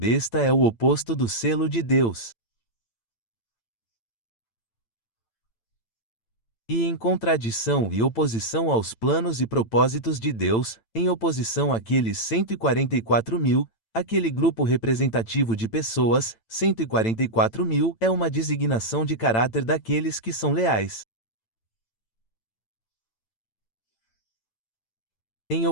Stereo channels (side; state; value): right; late; 8.9 ms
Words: é o oposto do selo de Deus. E em contradição e oposição aos planos e propósitos de Deus, em oposição àqueles 144.000, aquele grupo representativo de pessoas, 144.000, é uma designação de caráter daqueles que são leais. Em